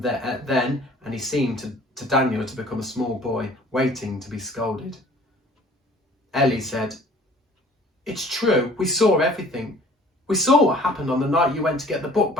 he seemed to Daniel to become a small boy, waiting to be scolded. Ellie said, It's true, we saw everything. We saw what happened on the night you went to get the book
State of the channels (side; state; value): both; normal; correlation 0.51